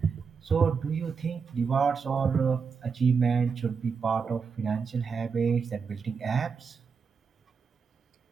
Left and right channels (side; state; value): left; quieter; 5.6 dB